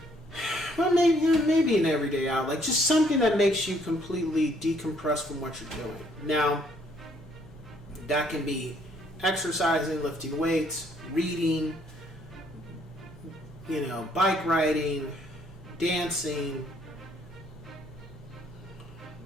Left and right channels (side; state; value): both; normal; correlation 0.66